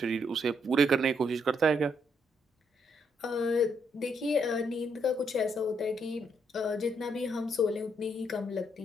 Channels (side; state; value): both; normal; correlation 0.75